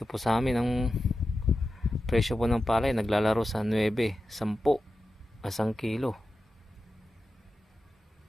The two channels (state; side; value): normal; both; correlation 0.92